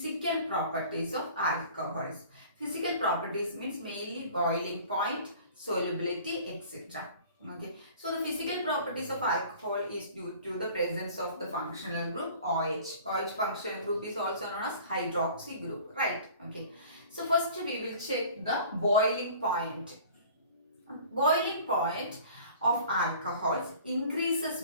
properties of alcohols. Physical properties means mainly boiling point, solubility, etc. Okay. So the physical properties of alcohol is due to the presence of the functional group OH. OH functional group is also known as hydroxy group, right? Okay. So first we will check the boiling point. Boiling point of alcohols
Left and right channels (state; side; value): inverted; both; correlation -0.46